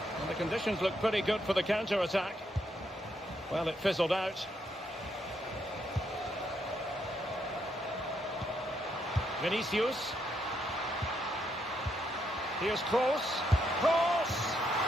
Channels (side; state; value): both; normal; correlation 0.77